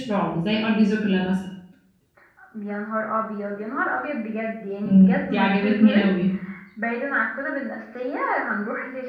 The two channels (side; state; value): both; identical; correlation 1.00